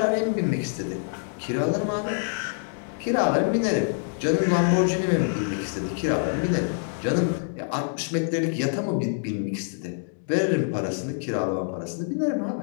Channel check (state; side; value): silent; right; digital silence